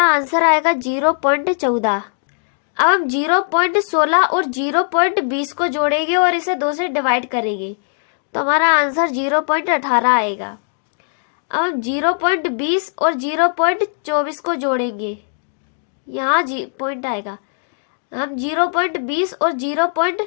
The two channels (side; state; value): right; silent; digital silence